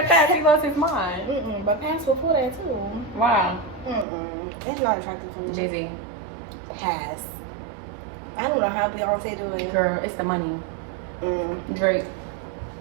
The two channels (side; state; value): left; drops out; at 4.0 s